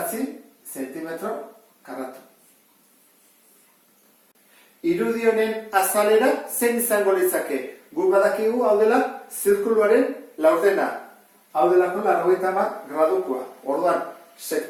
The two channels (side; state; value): both; identical; correlation 1.00